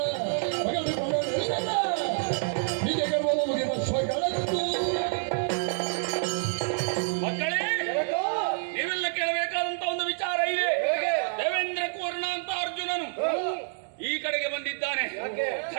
ಮಕ್ಕಳೇ, ನೀವೆಲ್ಲ ಕೇಳಬೇಕಾದಂತ ಒಂದು ವಿಚಾರ ಇದೆ. ದೇವೇಂದ್ರ ಕೂರ್ಣ ಅಂತ ಅರ್ಜುನನು ಈ ಕಡೆಗೆ ಬಂದಿದ್ದಾನೆ.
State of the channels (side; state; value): left; silent; digital silence